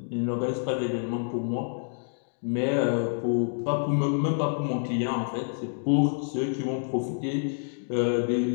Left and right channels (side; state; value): right; silent; digital silence